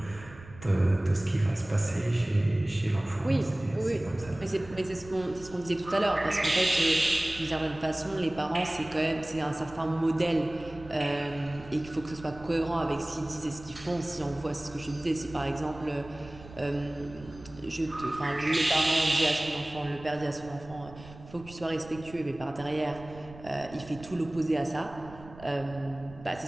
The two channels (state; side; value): noise; right; rumble, 18 dB below the sound